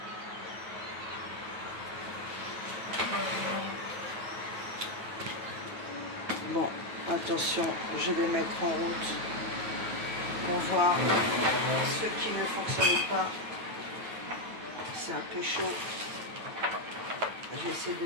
Bon, attention, je vais mettre en route pour voir ce qui ne fonctionne pas. C'est un peu chaud. Je vais essayer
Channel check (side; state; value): left; late; 9.2 ms